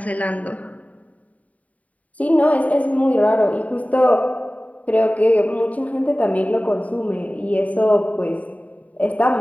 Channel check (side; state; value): right; late; 0.070 ms